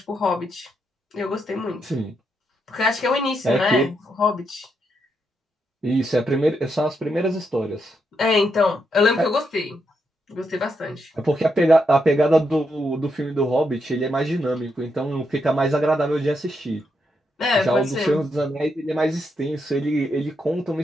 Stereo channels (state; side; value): normal; both; correlation 0.81